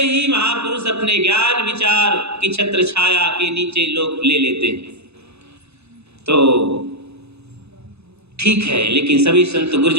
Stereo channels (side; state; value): left; late; 0.80 ms